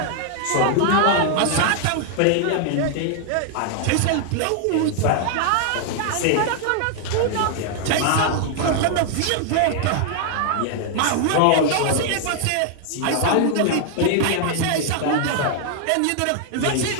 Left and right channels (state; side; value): different; both; correlation 0.00